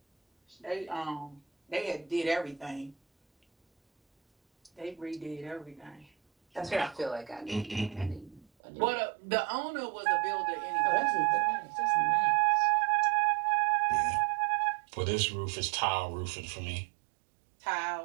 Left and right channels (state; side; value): drops out; left; at 8.5 s